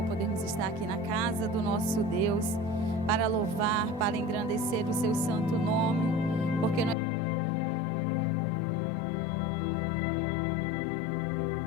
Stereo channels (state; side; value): drops out; right; at 7.0 s